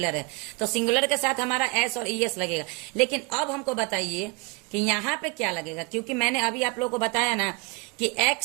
है, तो सिंगुलर के साथ हमारा एस और ES लगेगा। लेकिन अब हमको बताइए कि यहाँ पे क्या लगेगा, क्योंकि मैंने अभी आप लोगों को बताया ना कि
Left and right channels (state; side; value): quieter; left; 27.4 dB